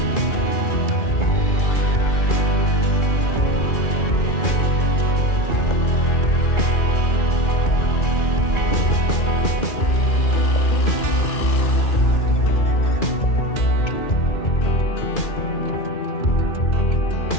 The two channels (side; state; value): right; late; 2.4 ms